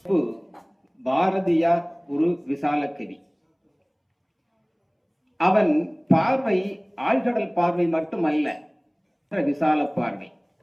பாரதியார் ஒரு விசால கவி. அவன் பார்வை ஆழ்கடல் பார்வை மட்டுமல்ல, விசால பார்வை.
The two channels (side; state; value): both; identical; correlation 1.00